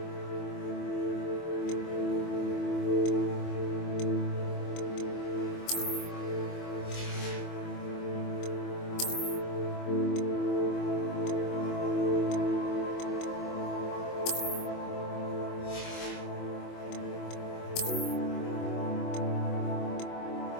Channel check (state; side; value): late; right; 24 ms